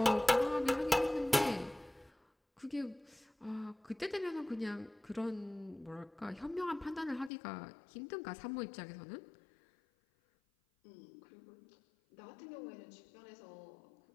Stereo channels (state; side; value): drops out; right; at 7.3 s